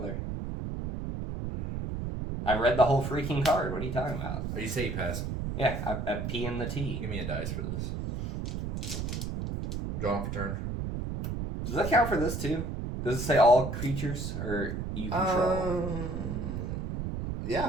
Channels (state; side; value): noise; right; rumble, 4 dB below the sound